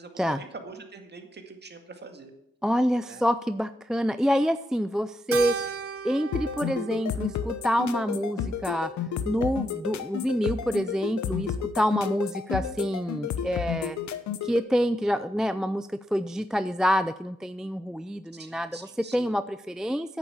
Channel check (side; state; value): both; normal; correlation 0.83